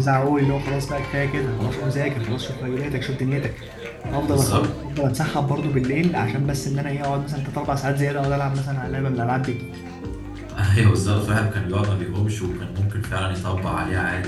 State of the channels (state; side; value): identical; both; correlation 1.00